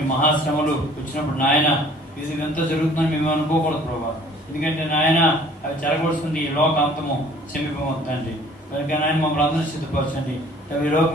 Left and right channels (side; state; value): both; normal; correlation 0.53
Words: మహాశ్రమలు వచ్చినప్పుడు నాయన ఇది ఎంత జరుగుతుందని మేము అనుకోకూడదు ప్రభా. ఎందుకంటే నాయన అవి జరగవలసింది ఈ లోక అంతము సమీపమవుతుందండి. కనుక నాయన మమ్మల్ని అందరూ సిద్ధపరచండి. ఈ